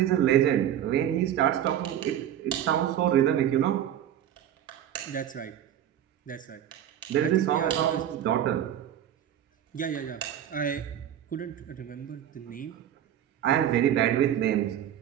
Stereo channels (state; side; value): quieter; left; 10.7 dB